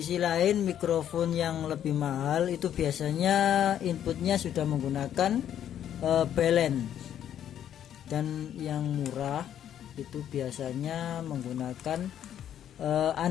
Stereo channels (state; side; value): quieter; right; 10.2 dB